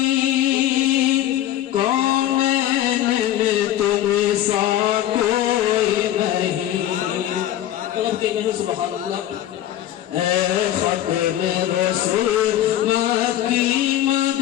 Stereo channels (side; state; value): right; quieter; 12.6 dB